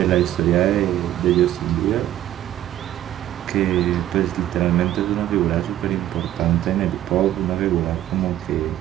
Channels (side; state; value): left; quieter; 12.9 dB